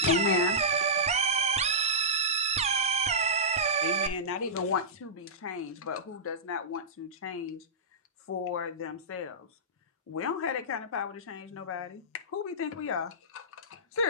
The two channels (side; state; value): both; normal; correlation -0.16